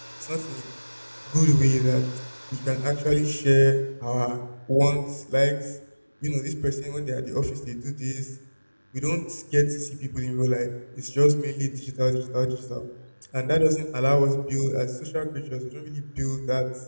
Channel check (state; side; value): inverted; both; correlation -1.00